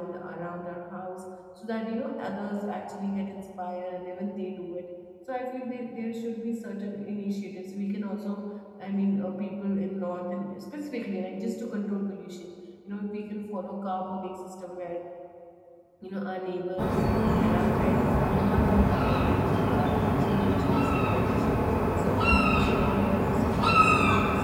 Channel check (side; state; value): both; identical; correlation 1.00